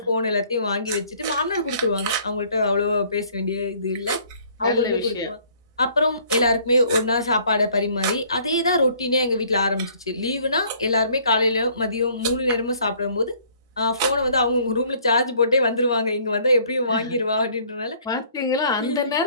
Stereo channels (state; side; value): inverted; both; correlation -0.59